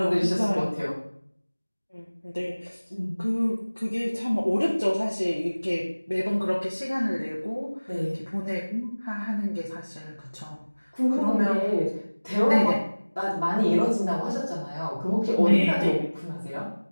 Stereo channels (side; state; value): both; inverted; correlation -1.00